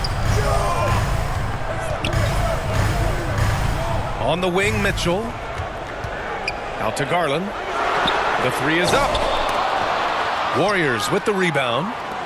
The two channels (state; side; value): identical; both; correlation 1.00